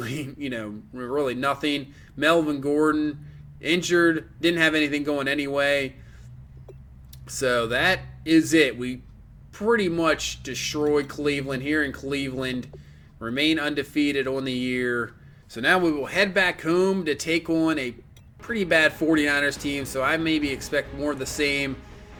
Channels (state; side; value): identical; both; correlation 1.00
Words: really nothing. Melvin Gordon, injured, didn't have anything going anyway. So that is it. We pretty much destroyed Cleveland here in Cleveland. Remain undefeated on the year. So now we will head back home to take on a pretty bad 49ers team. So I maybe expect more of the same